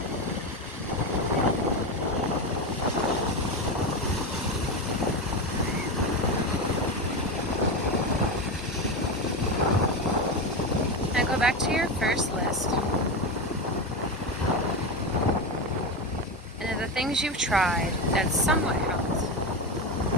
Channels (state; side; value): normal; both; correlation 0.17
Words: Now go back to your first list. And of the things you've tried that somewhat helped,